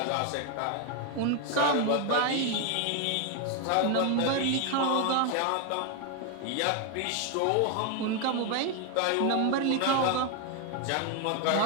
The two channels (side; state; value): both; different; correlation 0.01